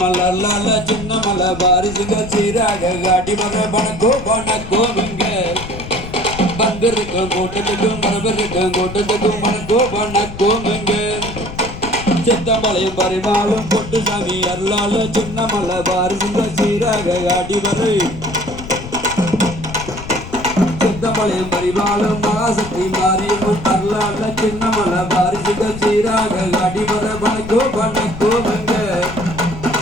அல்ல சின்ன மலை வாரிசுங்க சீராக அடிவரை வணக்கமுங்க வந்திருக்கும் கூட்டத்துக்கும் வரவிருக்கும் கூட்டத்துக்கும் வணக்கமுங்க சித்தமலையம் பரிமாளும் பொட்டு சாமி அருளால சின்ன மலை வாரிசுங்க சீராக அடிவரை சித்தமலையம் பரிமாளும் மகாசக்தி மாரியம்மன் அருளால சின்ன மலை வாரிசுங்க சீராக அடிவரை வணக்கமுங்க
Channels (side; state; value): left; noise; rumble, 11 dB below the sound